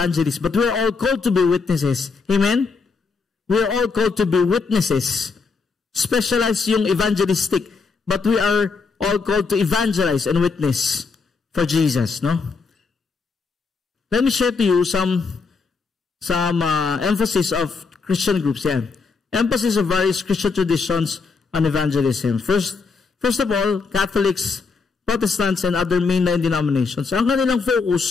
but we're all called to be witnesses. Amen? We're all called to be witnesses. Specialized yung evangelistic, but we are all called to evangelize and witness for Jesus, no? Let me share to you some emphasis of Christian groups. Yeah. Emphasis of various Christian traditions on evangelism. First of all, Catholics, Protestants, and other mainline denominations. Ang kanilang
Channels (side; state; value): right; quieter; 4.6 dB